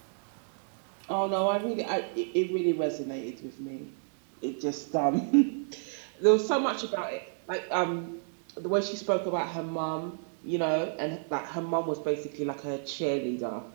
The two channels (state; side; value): silent; left; digital silence